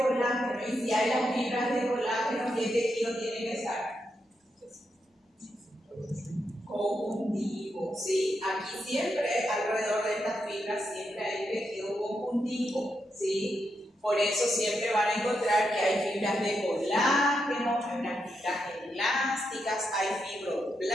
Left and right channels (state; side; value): normal; both; correlation 0.83